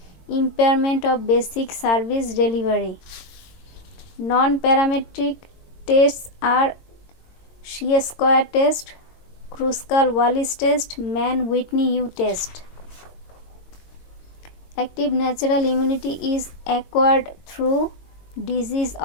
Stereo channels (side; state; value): right; late; 22 ms